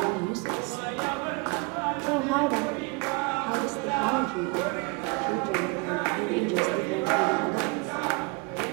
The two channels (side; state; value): left; quieter; 28.3 dB